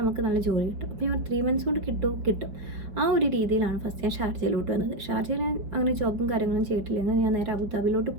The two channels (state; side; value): late; left; 5.0 ms